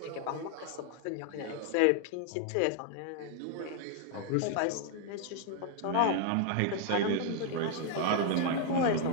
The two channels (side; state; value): both; different; correlation 0.00